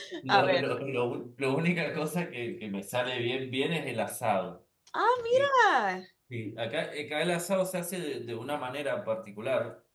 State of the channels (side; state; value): both; identical; correlation 1.00